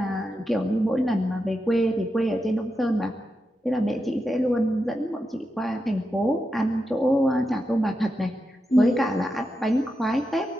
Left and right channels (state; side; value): normal; both; correlation 0.88